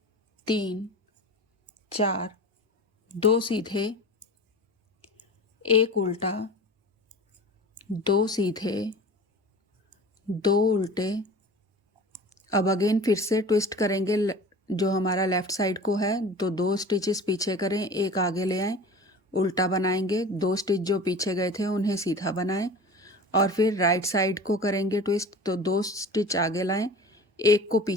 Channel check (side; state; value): both; normal; correlation 0.37